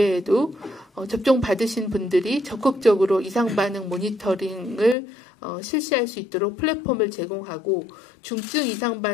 접종 받으신 분들이 적극적으로 이상 반응 모니터링을 실시할 수 있도록 플랫폼을 제공하고 중증 이상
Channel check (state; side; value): drops out; right; at 5.0 s